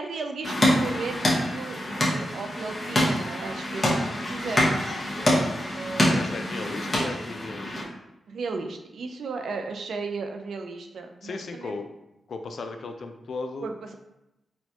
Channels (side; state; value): both; normal; correlation 0.87